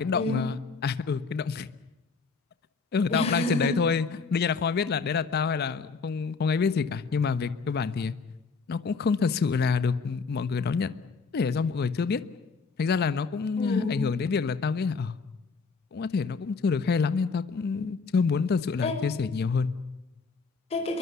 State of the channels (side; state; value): right; quieter; 4.8 dB